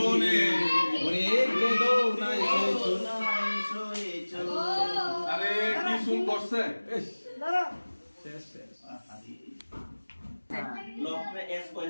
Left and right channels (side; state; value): both; inverted; correlation -1.00